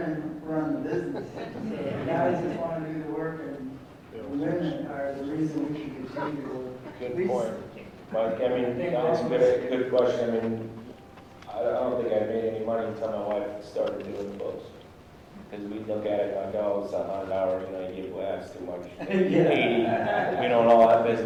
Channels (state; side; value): identical; both; correlation 1.00